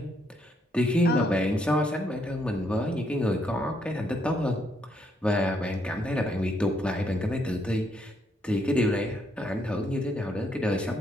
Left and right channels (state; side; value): normal; both; correlation 0.73